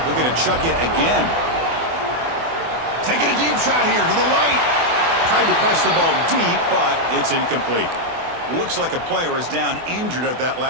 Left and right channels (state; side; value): late; left; 24 ms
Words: Looking to chuck it again. Taking a deep shot here to the right. Tried to press the ball deep, but it's incomplete. Looks like a player is down injured at that